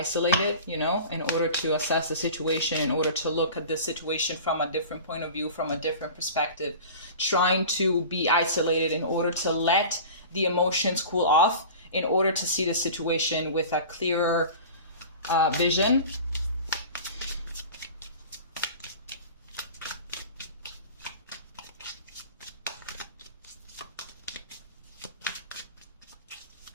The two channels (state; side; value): inverted; both; correlation -0.37